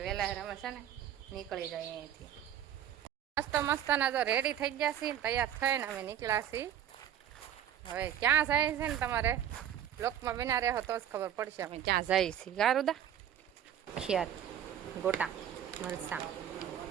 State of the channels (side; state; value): left; quieter; 10.3 dB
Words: વહેલા અમે છે ને નીકળી જાય અહીંયાથી. મસ્ત મસ્તના જો રેડી થઈ ગયા છીએ, તૈયાર થઈને અમે નીકળ્યા છીએ. હવે ક્યાં જાય છે ને તમારે બ્લોકમાં બના રહ્યો તો જ ખબર પડશે અમે ક્યાં જઈએ છીએ. ગારુદા ખિયાર ગોટા મરસા